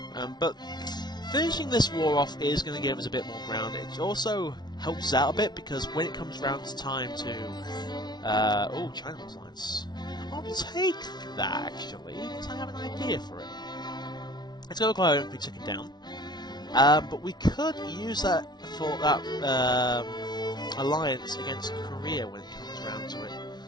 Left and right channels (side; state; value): right; late; 0.20 ms